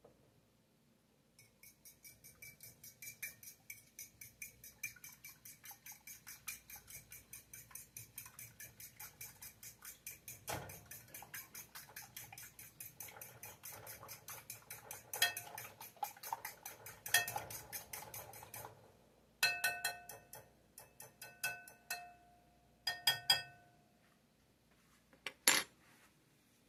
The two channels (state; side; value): identical; both; correlation 1.00